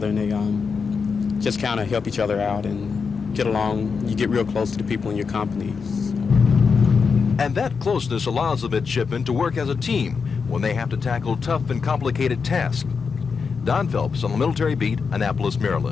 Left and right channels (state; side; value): quieter; right; 5.4 dB